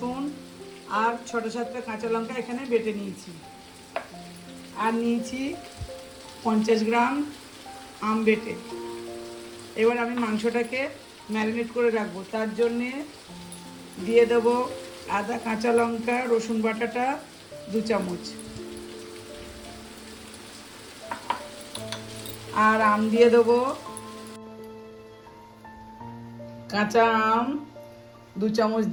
আর 6-7টা কাঁচা লঙ্কা এখানে বেটে নিয়েছি। আর নিয়েছি 50 গ্রাম আম বেটে। এবার আমি মাংসটাকে ম্যারিনেট করে রাখবো। তার জন্যে দিয়ে দেবো আদা, কাঁচা লঙ্কা, রসুন বাটাটা 2 চামচ, আর আম দিয়ে দেবো, কাঁচা আম 2 চামচ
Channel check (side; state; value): both; identical; correlation 1.00